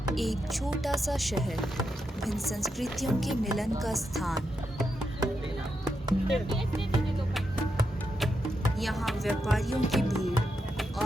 एक छोटा सा शहर, भिन्न संस्कृतियों के मिलन का स्थान। यहाँ व्यापारियों की भीड़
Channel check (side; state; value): both; normal; correlation 0.85